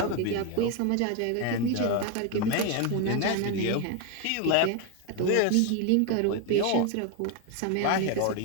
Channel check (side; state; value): both; different; correlation 0.02